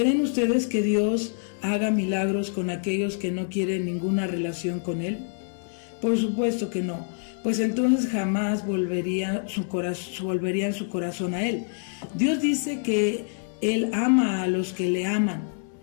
ustedes que Dios haga milagros con aquellos que no quieren ninguna relación con Él? Por supuesto que no, pues entonces jamás volverían su corazón a Él. Dios dice que Él ama a los que le aman.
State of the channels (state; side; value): silent; right; 60 dB below the other